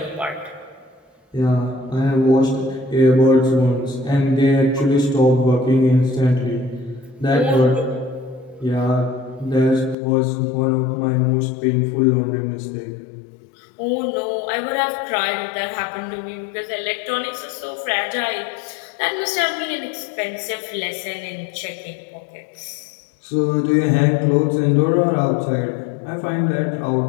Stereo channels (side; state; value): right; drops out; at 10.0 s